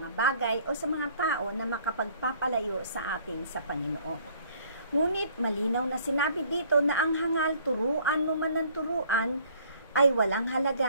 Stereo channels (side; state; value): both; inverted; correlation -0.58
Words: bagay o sa mga tao na makapagpapalayo sa atin sa Panginoon. Ngunit malinaw na sinabi dito na ang hangal turuan mo man ng turuan ay walang